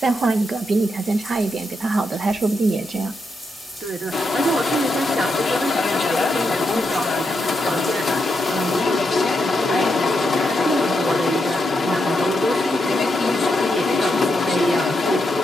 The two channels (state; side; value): normal; both; correlation 0.83